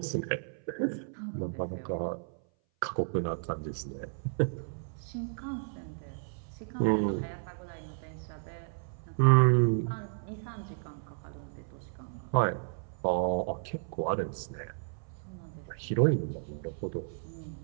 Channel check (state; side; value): silent; left; 56 dB below the other